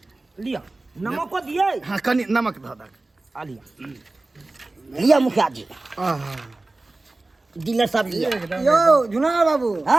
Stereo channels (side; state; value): left; quieter; 3.0 dB